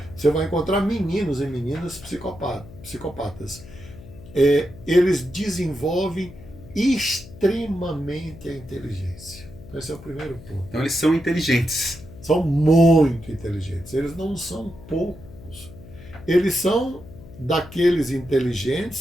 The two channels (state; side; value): noise; left; hum, 18 dB below the sound